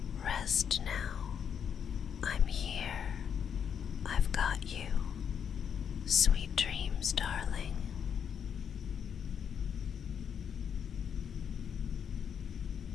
Rest now. I'm here. I've got you. Sweet dreams, darling.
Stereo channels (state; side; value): quieter; right; 7.8 dB